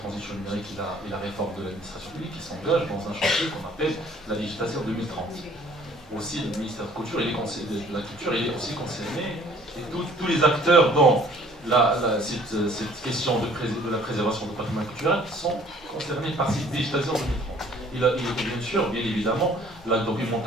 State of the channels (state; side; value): normal; both; correlation 0.55